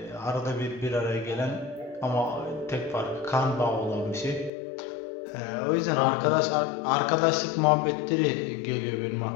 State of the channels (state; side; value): drops out; right; at 4.5 s